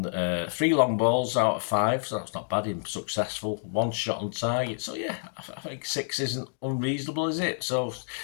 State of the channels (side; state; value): right; silent; digital silence